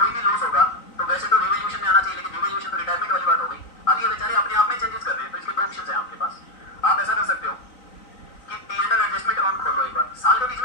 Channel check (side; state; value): right; late; 3.9 ms